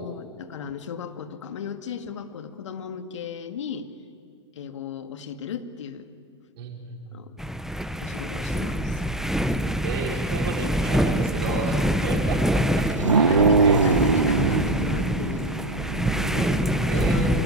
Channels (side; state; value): both; normal; correlation 0.22